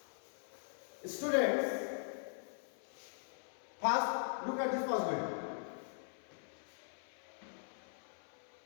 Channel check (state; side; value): silent; right; 50 dB below the other